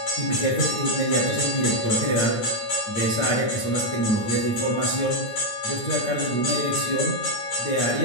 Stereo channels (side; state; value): right; late; 9.0 ms